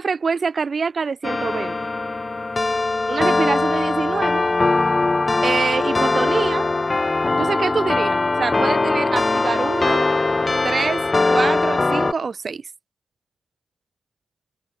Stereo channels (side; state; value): both; normal; correlation 0.94